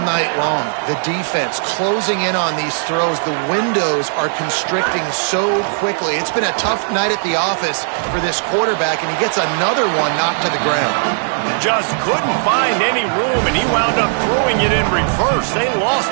night long. The defense closing in on these throws. The windows are constricting so quickly. It's been a tough night at the office for this quarterback, and he gets another one knocked to the ground. Just couldn't find any room, and he wound up throwing it in reverse. They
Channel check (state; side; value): silent; left; 63 dB below the other